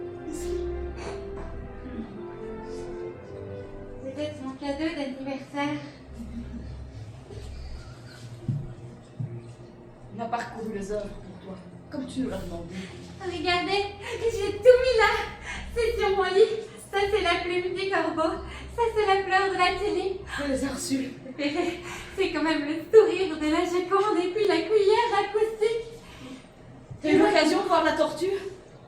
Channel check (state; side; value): identical; both; correlation 1.00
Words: C'était mon cadeau d'anniversaire. On a parcouru les œuvres pour toi, comme tu nous l'as demandé. Regardez, j'ai tout mis là. C'est sur mon lit. Ça, c'est la plume du corbeau. Ça, c'est la fleur de la télé. Je les ai reçus. C'est quand même le sourire de la Joconde et puis la cuillère acoustique. T'as eu l'occasion de voir la tortue?